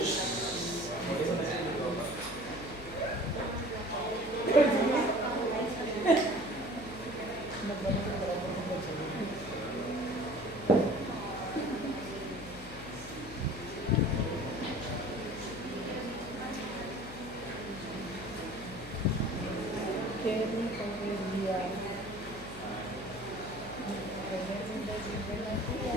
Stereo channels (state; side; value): noise; left; hum, 13 dB below the sound